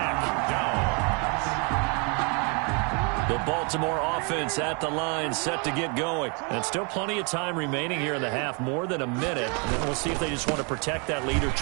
The Baltimore offense at the line, set to get going. And still plenty of time remaining here in the half, more than a minute. And then we'll see if they just want to protect that lead or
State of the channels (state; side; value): quieter; left; 34.4 dB